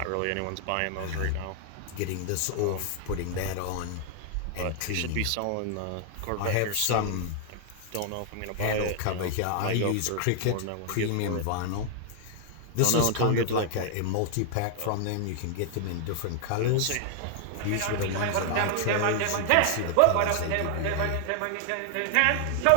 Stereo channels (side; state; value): both; different; correlation 0.00